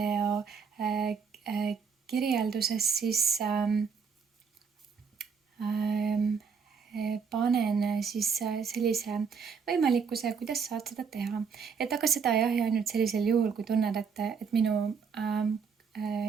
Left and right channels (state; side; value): quieter; left; 6.0 dB